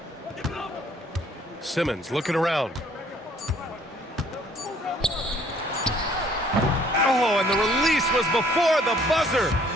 Simmons looking around. Oh, and the release was before the buzzer,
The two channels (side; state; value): both; normal; correlation 0.60